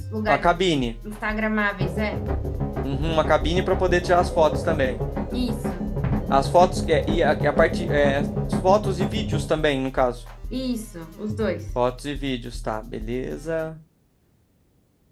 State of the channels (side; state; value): both; identical; correlation 1.00